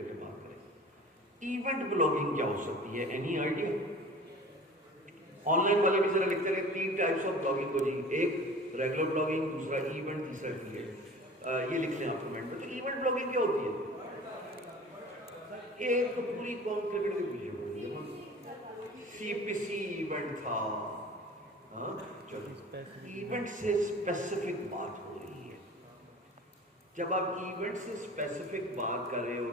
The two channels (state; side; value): normal; both; correlation 0.42